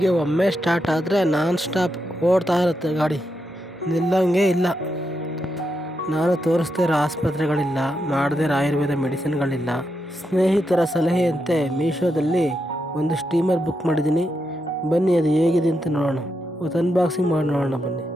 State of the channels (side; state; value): both; normal; correlation 0.84